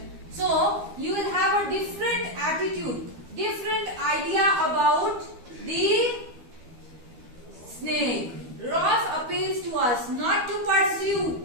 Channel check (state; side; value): late; left; 12 ms